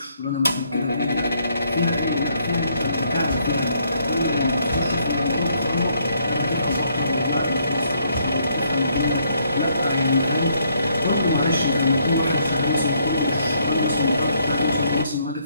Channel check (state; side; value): inverted; both; correlation -0.70